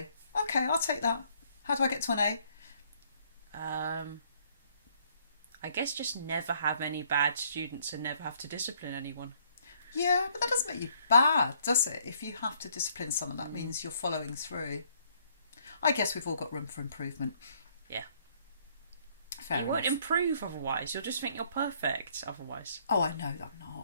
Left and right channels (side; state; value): both; inverted; correlation -0.64